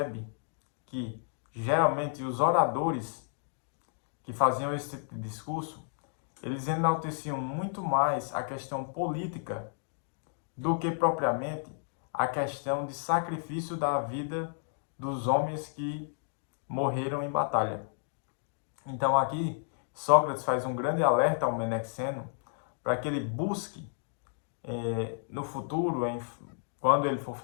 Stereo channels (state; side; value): silent; right; digital silence